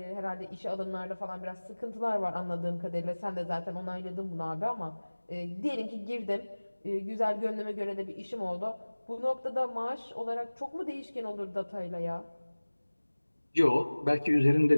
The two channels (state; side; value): inverted; both; correlation -1.00